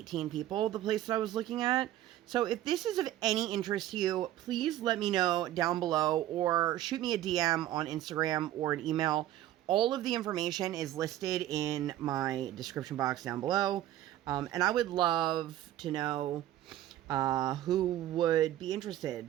people, the place that I was looking at. So if this is of any interest to you, please let me know down below, or shoot me a DM on Instagram or an email. All of the information is listed in my description box down below. And I would love to know who would be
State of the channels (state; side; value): quieter; left; 13.3 dB